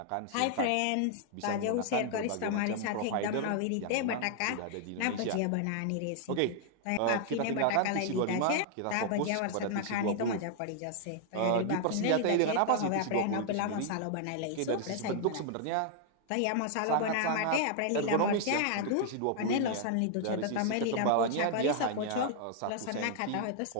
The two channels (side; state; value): both; different; correlation 0.00